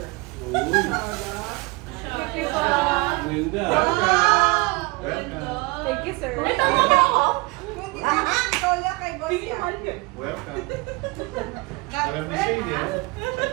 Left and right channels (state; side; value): quieter; left; 25.6 dB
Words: Uy. Thank you po. Ganda. Welcome. Thank you, sir. Ito mo ba ako? Ikaw lang kay boss yan. Welcome. Alam ni Shane yan.